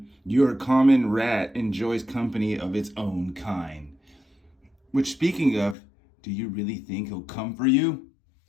your common rat enjoys company of its own kind. Which, speaking of, do you really think he'll come for you?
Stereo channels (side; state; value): right; drops out; at 5.8 s